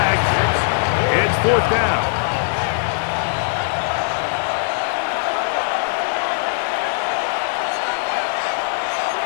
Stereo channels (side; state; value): right; silent; digital silence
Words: It's fourth down.